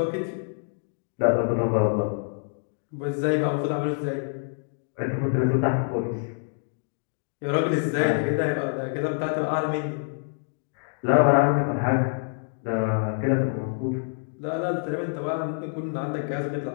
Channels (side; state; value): right; silent; digital silence